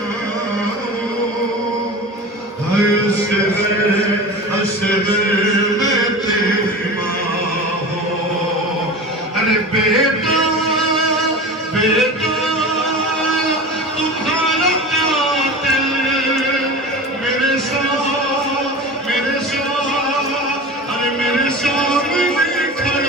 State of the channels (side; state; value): both; normal; correlation 0.32